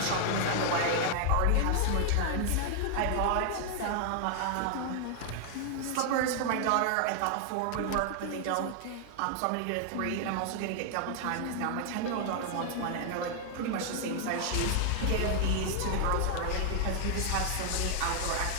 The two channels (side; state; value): both; different; correlation 0.00